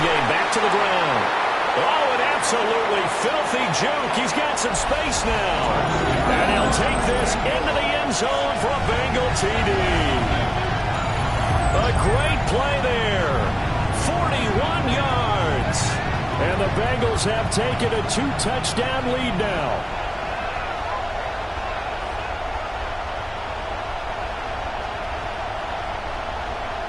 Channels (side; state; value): both; identical; correlation 1.00